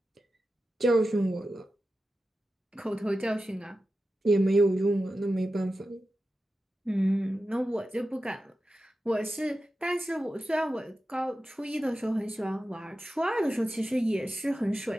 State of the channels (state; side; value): normal; both; correlation 0.92